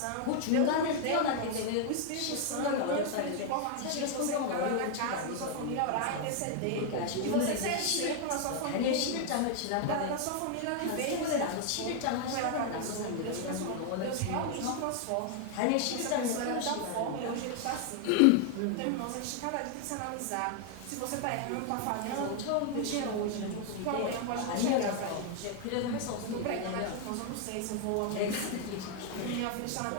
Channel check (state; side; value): different; both; correlation 0.00